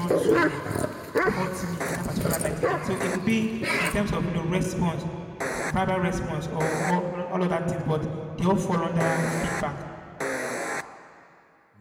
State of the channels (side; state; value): both; identical; correlation 1.00